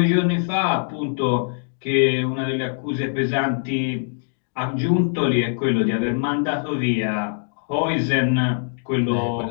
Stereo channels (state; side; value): silent; right; digital silence